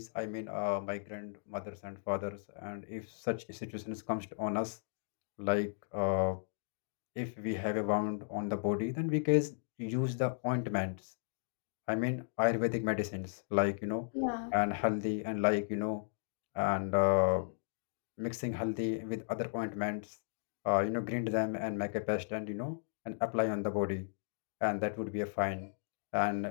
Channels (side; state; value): right; silent; digital silence